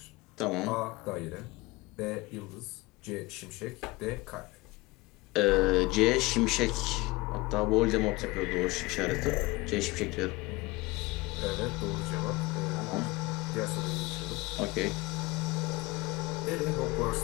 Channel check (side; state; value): right; quieter; 22.3 dB